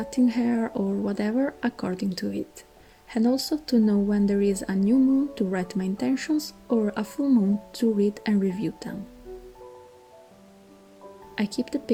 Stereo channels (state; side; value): identical; both; correlation 1.00